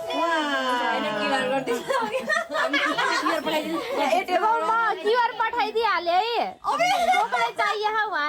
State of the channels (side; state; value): both; identical; correlation 1.00